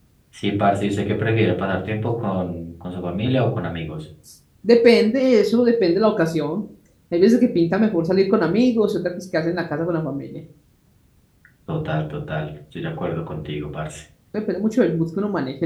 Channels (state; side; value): identical; both; correlation 1.00